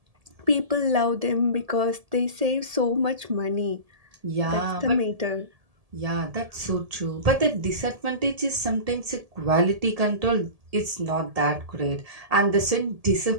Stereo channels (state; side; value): late; left; 1.7 ms